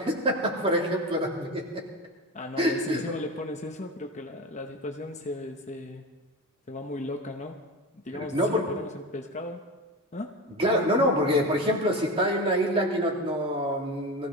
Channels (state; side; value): normal; both; correlation 0.25